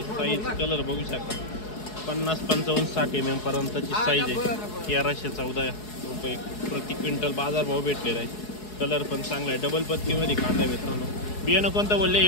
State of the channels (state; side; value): late; right; 4.7 ms